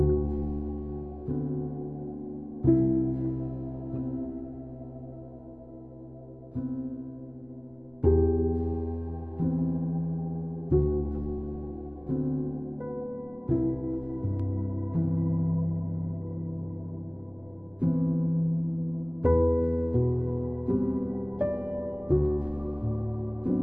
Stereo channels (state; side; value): late; left; 0.060 ms